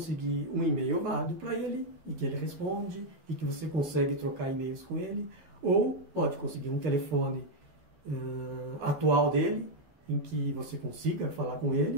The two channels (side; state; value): left; late; 12 ms